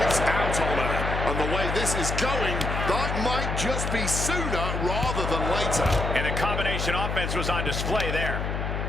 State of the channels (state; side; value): noise; left; hum, 2 dB below the sound